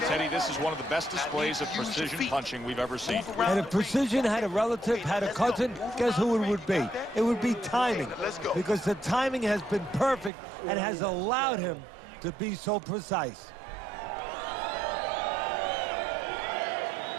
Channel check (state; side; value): drops out; left; at 10.3 s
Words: this is one of the best displays of precision punching we've ever seen. And if precision had a relative, had a cousin, guess who it would be? It would be timing. Because the timing has been perfect and has allowed him to be so precise.